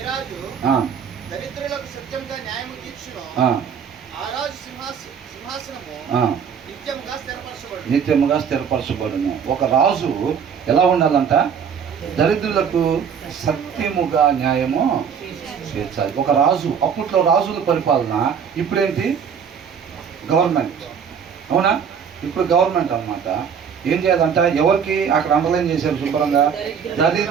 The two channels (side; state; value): left; quieter; 7.2 dB